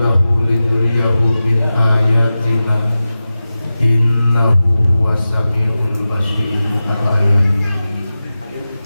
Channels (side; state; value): both; inverted; correlation -0.94